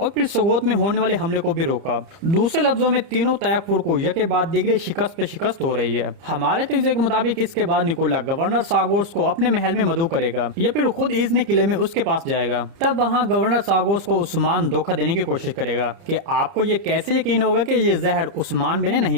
फिर सगोत में होने वाले हमले को भी रोका। दूसरे लफ्जों में तीनों तैयफुर को यके बाद दिगरे शिकस्त पे शिकस्त हो रही है। हमारे तजज़िये के मुताबिक इसके बाद निकोला गवर्नर सागोस को अपने महल में मदऊ करेगा या फिर खुद इजने किले में उसके पास जाएगा। तब वहाँ गवर्नर सागोस को उस्मान धोखा देने की कोशिश करेगा कि आपको ये कैसे यकीन होगा कि ये जहर उस्मान बे ने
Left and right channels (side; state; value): left; late; 30 ms